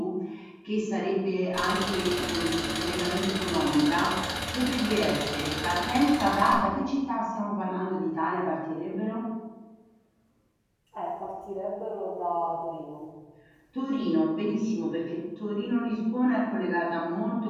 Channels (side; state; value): both; identical; correlation 1.00